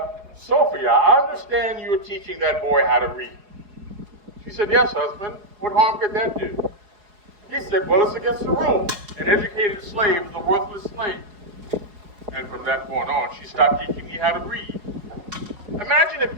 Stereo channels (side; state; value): left; late; 5.0 ms